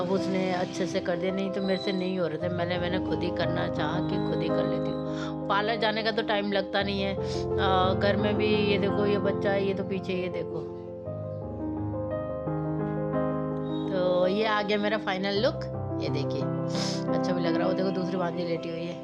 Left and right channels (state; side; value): identical; both; correlation 1.00